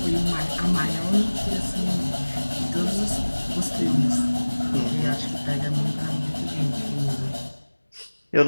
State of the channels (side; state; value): both; inverted; correlation -1.00